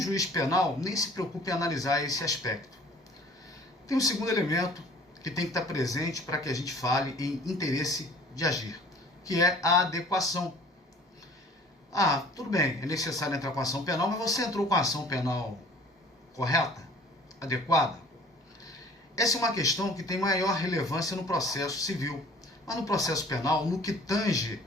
penal nem se preocupa em analisar esse aspecto. Tem um segundo elemento que tem que estar presente para que a gente fale em interesse de agir, que é a adequação. Ah, tudo bem, é necessário entrar com a ação penal, mas você entrou com a ação penal correta? Adequada? Essa é uma questão que tem maior relevância no processo civil. Mas no processo penal, no que tange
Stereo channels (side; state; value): both; normal; correlation 0.50